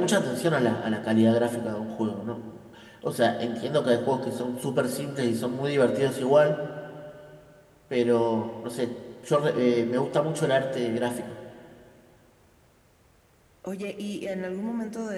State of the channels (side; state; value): both; identical; correlation 1.00